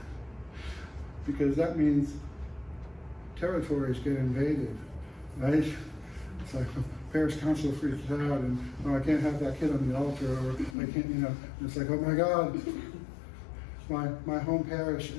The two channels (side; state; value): right; drops out; at 10.8 s